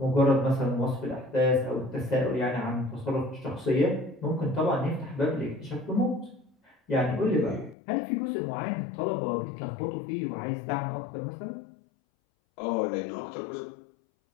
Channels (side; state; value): right; drops out; at 7.8 s